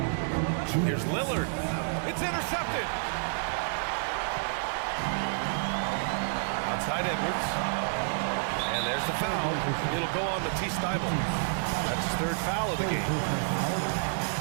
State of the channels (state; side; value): silent; left; 58 dB below the other